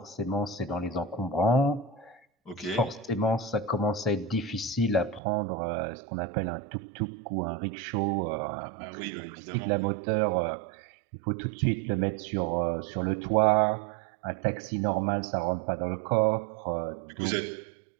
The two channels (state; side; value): drops out; left; at 5.2 s